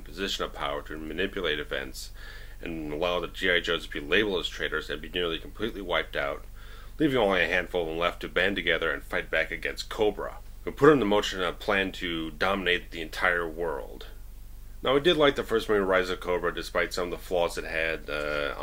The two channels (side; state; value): both; identical; correlation 1.00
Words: position of power to manipulate events and allow the G.I. Joes to be labeled as traitors and be nearly completely wiped out, leaving only a handful of them left to band together and fight back against Cobra, who put into motion a plan to dominate the entire world. Now, I did like the first movie, Rise of Cobra, despite some of the flaws it had,